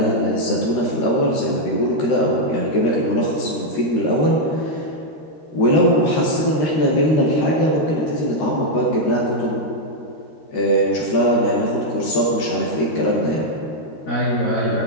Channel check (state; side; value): late; right; 13 ms